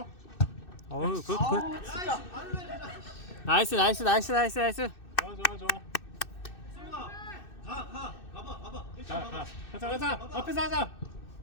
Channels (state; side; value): late; right; 2.6 ms